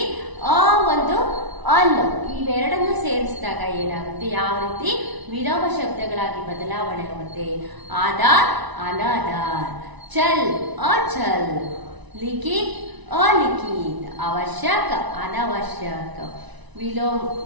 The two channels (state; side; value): late; left; 1.0 ms